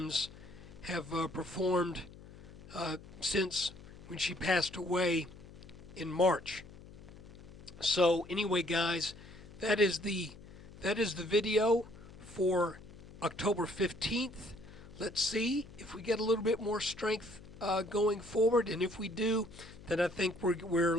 have performed since when she passed away in March. So anyway, guys, that is the video for October 15th. Let's see if we get a little bit more strength going forward, and if we do, then I think we're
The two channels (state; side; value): noise; left; hum, 18 dB below the sound